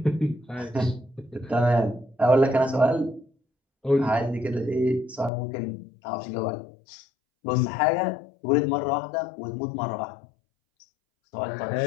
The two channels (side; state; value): right; drops out; at 5.3 s